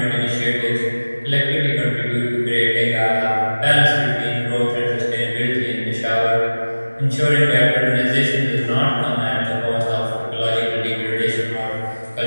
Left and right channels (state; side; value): inverted; both; correlation -1.00